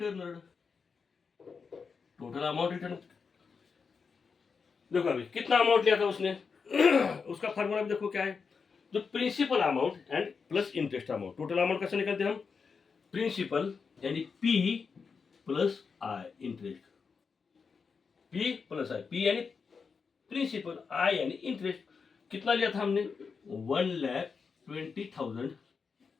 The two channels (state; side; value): quieter; right; 5.4 dB